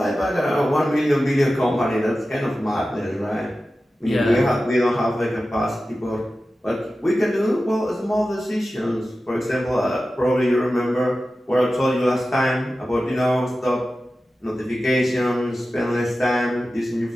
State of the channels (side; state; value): both; normal; correlation 0.94